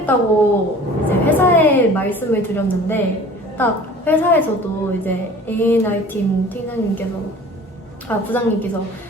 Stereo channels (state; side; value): normal; both; correlation 0.45